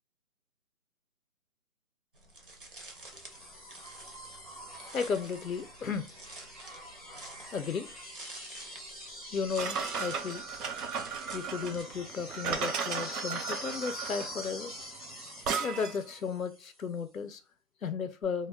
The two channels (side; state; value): both; normal; correlation 0.43